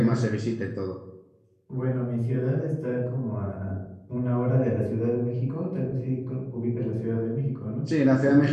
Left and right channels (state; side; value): identical; both; correlation 1.00